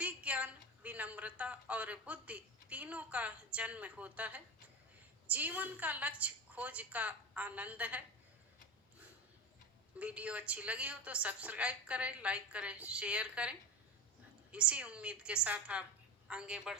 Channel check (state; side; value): normal; both; correlation 0.24